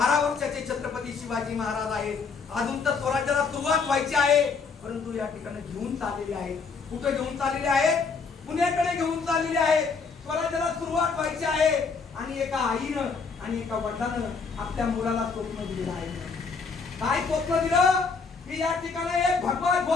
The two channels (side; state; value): right; quieter; 5.0 dB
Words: वर्षाचे छत्रपती शिवाजी महाराज आहेत. अजून तर स्वराज्याला सुरुवात व्हायची आहे, परंतु या ठिकाणी घेऊन चाललेले आहेत. कुठे घेऊन चाललेले आहेत, पुण्याकडे घेऊन चाललेले आहेत. स्वराज्याला सुरुवात व्हायची आहे आणि एका आईनं आणि एका वडिलानं आपल्या मुलाला स्वप्न दिलेलं आहे. काय स्वप्न दिलं की या ठिकाणी एक भगवा